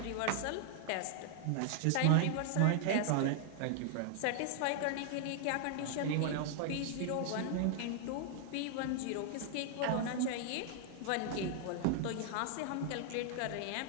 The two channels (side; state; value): both; different; correlation 0.00